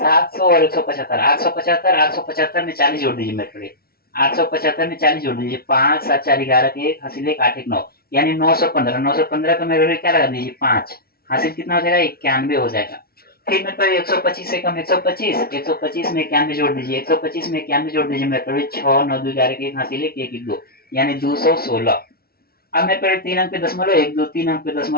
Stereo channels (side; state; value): right; late; 0.44 ms